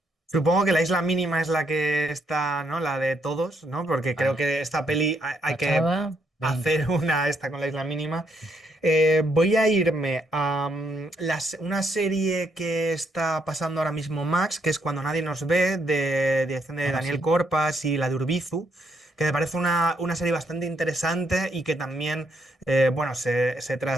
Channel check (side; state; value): both; normal; correlation 0.75